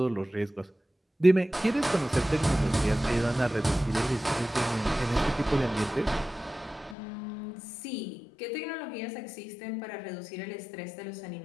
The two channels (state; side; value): drops out; right; at 7.0 s